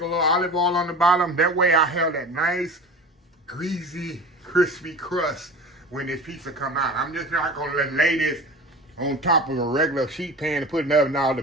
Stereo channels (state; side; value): normal; both; correlation 0.34